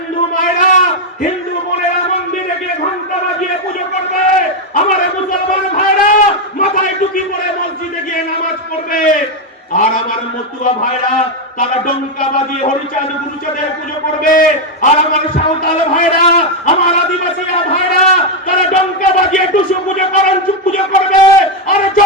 মায়েরা হিন্দু বোনেরা মন্দিরে গিয়ে ঘন্টা বাজিয়ে পুজো করবে, আমার মুসলমান ভাইরা মাথায় টুপি পরে মসজিদে গিয়ে নামাজ পড়বে, আর আমার মতুয়া ভাইরা তারা ডঙ্কা বাজিয়ে হরিচাঁদ গুরুচাঁদের পুজো করবে, আর আমার সাঁওতাল ভাইরা আমার আদিবাসী ভাইরা তারা ডঙ্কা বাজিয়ে টুসু পুজো করেন পুজো করবে, আর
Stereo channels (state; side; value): normal; both; correlation 0.04